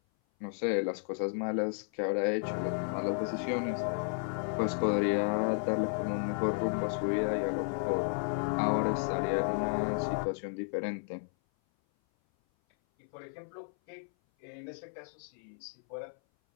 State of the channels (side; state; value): right; silent; 56 dB below the other